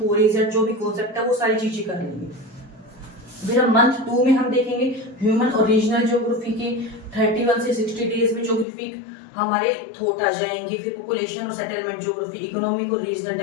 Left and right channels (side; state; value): right; drops out; at 8.7 s